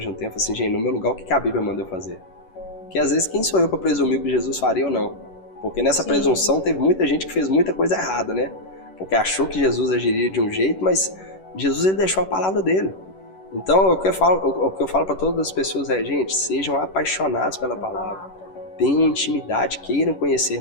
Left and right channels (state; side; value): late; right; 11 ms